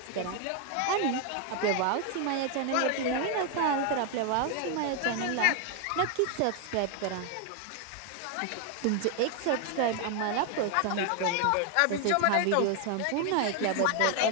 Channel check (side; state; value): both; different; correlation 0.01